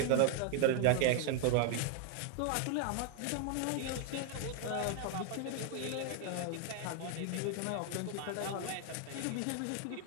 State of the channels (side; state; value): both; different; correlation 0.00